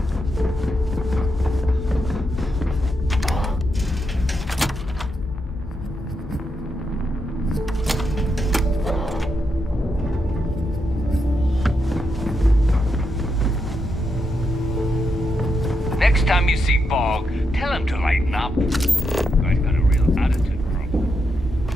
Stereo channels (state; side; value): normal; both; correlation 0.83